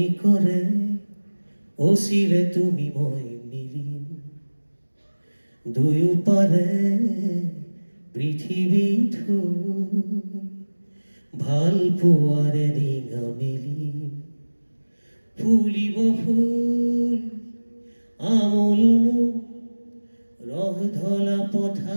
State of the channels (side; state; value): both; inverted; correlation -1.00